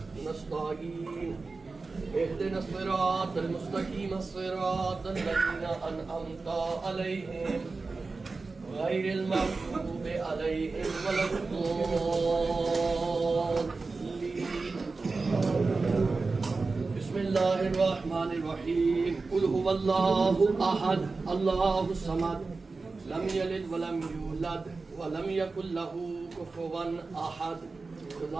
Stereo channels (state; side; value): quieter; left; 3.9 dB